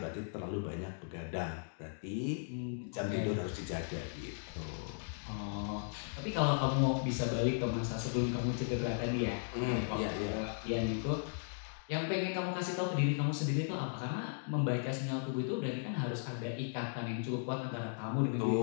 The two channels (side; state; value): right; silent; digital silence